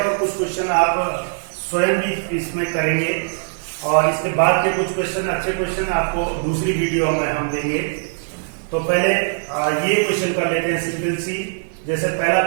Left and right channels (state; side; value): silent; left; digital silence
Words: कुछ क्वेश्चन आप स्वयं भी इसमें करेंगे, और इसके बाद के कुछ क्वेश्चन, अच्छे क्वेश्चन आपको दूसरी वीडियो में हम देंगे। तो पहले ये क्वेश्चन कर लेते हैं सिंपल सी। जैसे पहला